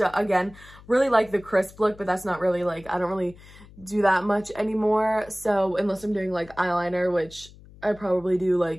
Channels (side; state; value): left; noise; hum, 22 dB below the sound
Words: again, really like the crisp look, but that's not really like, I don't really do that much anymore. So unless I'm doing like eyeliner, which I probably do